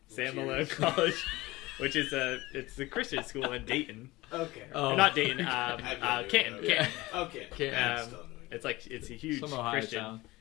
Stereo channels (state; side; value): quieter; right; 20.0 dB